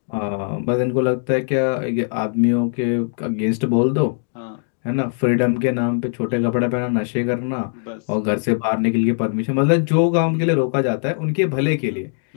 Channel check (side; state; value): right; silent; 62 dB below the other